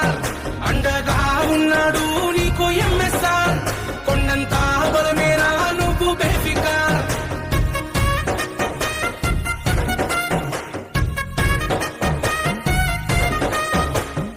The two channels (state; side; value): identical; both; correlation 1.00